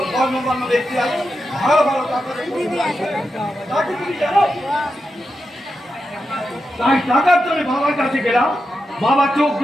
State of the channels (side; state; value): both; normal; correlation 0.88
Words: কর্মকর্মা ব্যক্তি আছে ভালো ভালো টাকা তুমি জানো। তাই টাকার জন্য বাবার কাছে গেলাম। বাবা চোখ